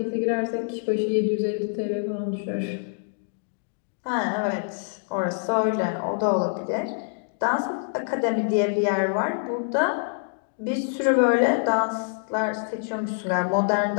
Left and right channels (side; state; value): right; silent; digital silence